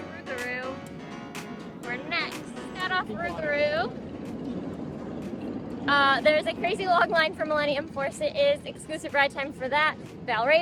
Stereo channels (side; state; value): both; identical; correlation 1.00